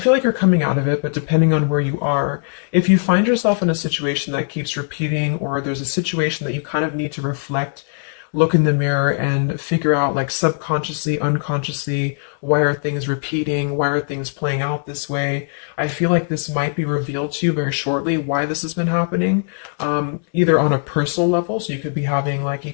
like you're coming out of it, but depending on where you are, if you find yourself in a situation that keeps repeating, or there's a situation that you kind of need to reflect, look in the mirror and figure out, like, subconsciously, unconsciously, why are things repeating? Why are things playing out this way? I feel like this might be revealed to you very shortly, why this has been happening, either on a personal level. So you could be having like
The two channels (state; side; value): silent; right; digital silence